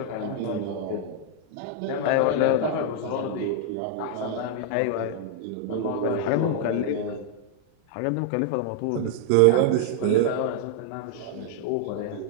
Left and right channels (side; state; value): both; different; correlation 0.00